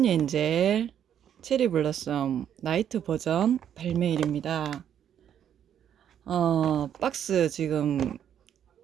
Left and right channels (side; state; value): left; quieter; 9.5 dB